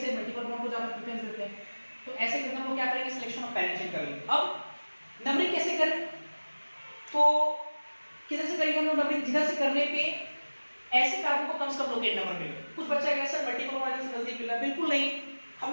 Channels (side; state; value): both; inverted; correlation -1.00